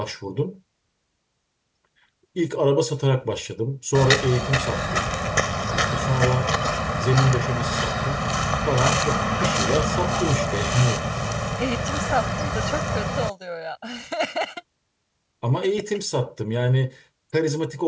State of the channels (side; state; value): both; identical; correlation 1.00